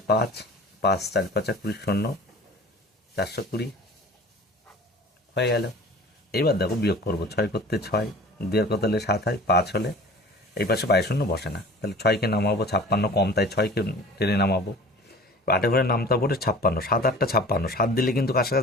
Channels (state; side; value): normal; both; correlation 0.42